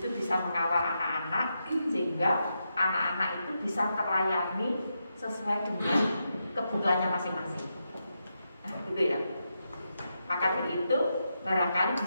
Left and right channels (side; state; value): both; inverted; correlation -0.85